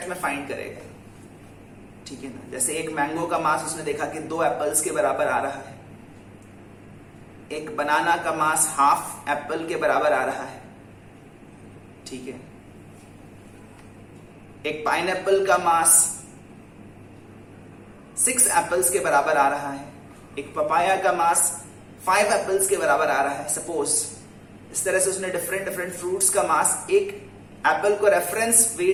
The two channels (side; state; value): both; identical; correlation 1.00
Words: में फाइंड करेगा. ठीक है ना? जैसे एक मैंगो का मास उसने देखा कि 2 एप्पल्स के बराबर आ रहा है. एक बनाना का मास हाफ एप्पल के बराबर आ रहा है. ठीक है. एक पाइनएप्पल का मास 6 एप्पल्स के बराबर आ रहा है. एक पपाया का मास 5 एप्पल्स के बराबर आ रहा है. सपोज इस तरह से उसने डिफरेंट फ्रूट्स का मास एक एप्पल को रेफरेंस